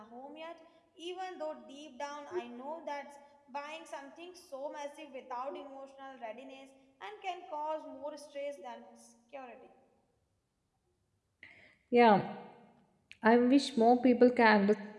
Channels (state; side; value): identical; both; correlation 1.00